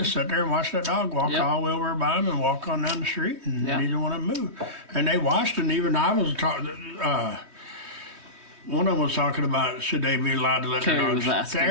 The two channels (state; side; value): late; left; 3.2 ms